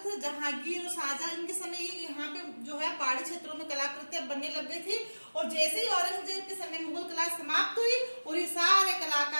थे जहांगीर और शाहजहां, इनके समय ये यहाँ पे जो है पहाड़ी क्षेत्रों में कलाकृतियां बनने लग गई थी। और जैसे ही औरंगजेब के समय मुगल कला समाप्त हुई और ये सारे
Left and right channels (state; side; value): inverted; both; correlation -1.00